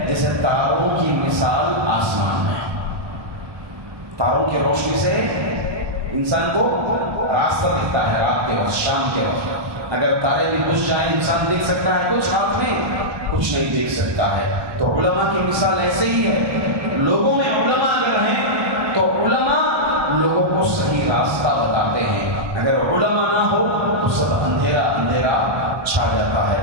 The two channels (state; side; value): late; left; 1.2 ms